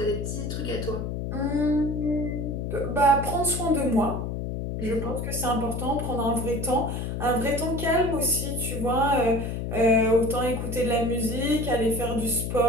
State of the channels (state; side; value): noise; left; hum, 4 dB below the sound